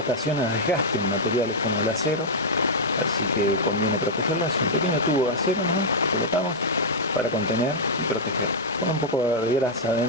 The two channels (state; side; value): normal; both; correlation -0.05